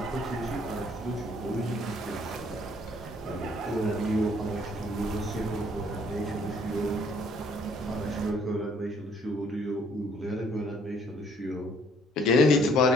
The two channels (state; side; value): normal; both; correlation 0.62